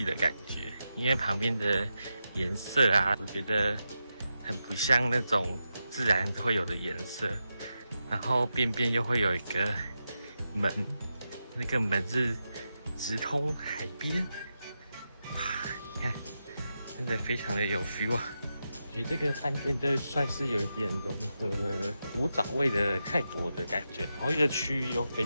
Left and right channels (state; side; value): inverted; both; correlation -0.88